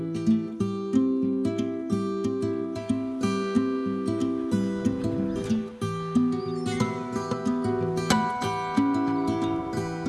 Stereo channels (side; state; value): both; identical; correlation 1.00